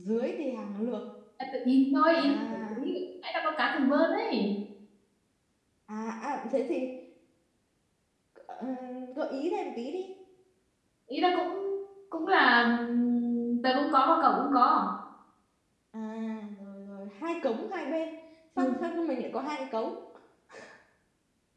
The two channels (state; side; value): identical; both; correlation 1.00